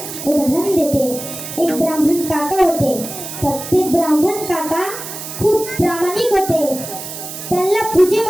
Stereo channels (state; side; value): noise; right; hiss, 9 dB below the sound